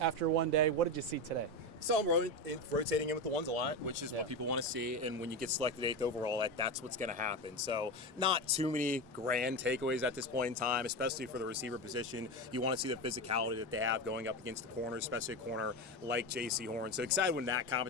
one day. What did you see today? So I'm rotating in with the ones a lot, which is what people want to see. And when you get selected 8th overall, that's what's going to happen. So not too many grand takeaways at this point in time, especially for the receiver position. You want to see the physicality that they have going up against the corner, especially a corner like J.C. Horn. So excited when that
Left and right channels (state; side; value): normal; both; correlation 0.18